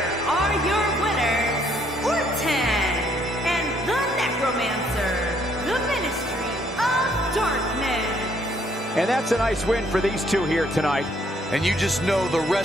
are your winners, Orton and the Necromancer, the Ministry of Darkness. And that's a nice win for these two here tonight. And you just know the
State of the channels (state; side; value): normal; both; correlation 0.67